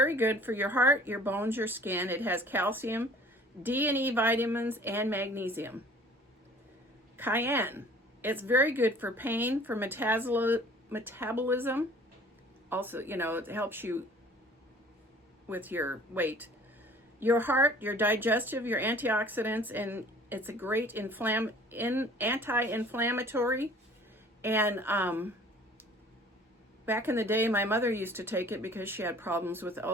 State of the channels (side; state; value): both; normal; correlation 0.50